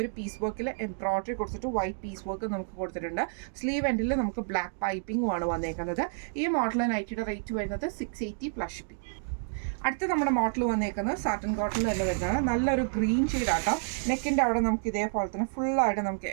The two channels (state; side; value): silent; left; digital silence